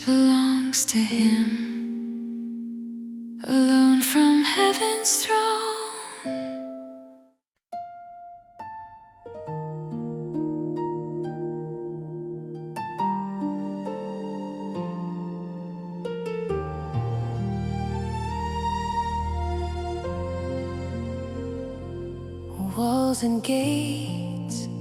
to Him, alone from heaven's throne. Walls and gates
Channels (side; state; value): both; identical; correlation 1.00